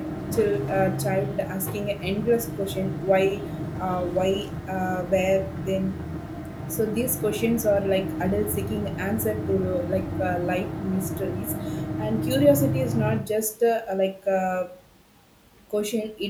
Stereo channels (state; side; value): identical; both; correlation 1.00